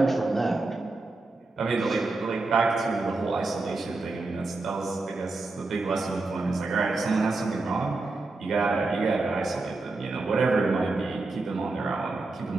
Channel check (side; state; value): left; quieter; 3.3 dB